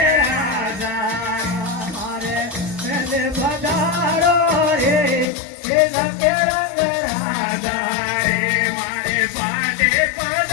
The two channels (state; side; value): drops out; right; at 5.2 s